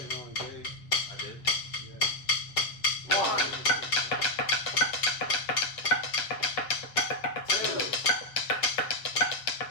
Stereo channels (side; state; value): right; late; 7.5 ms